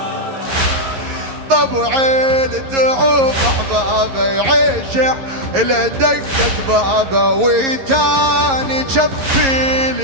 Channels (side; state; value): left; late; 11 ms